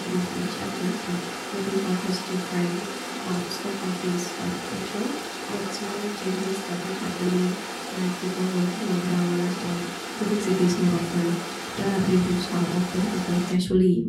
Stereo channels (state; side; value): identical; both; correlation 1.00